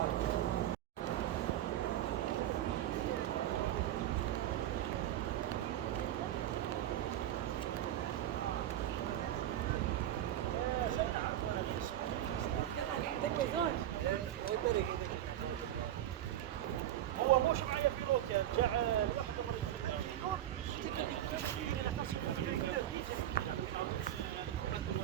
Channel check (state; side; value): quieter; left; 12.3 dB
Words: هو مش معايا في روكا جاء لوحده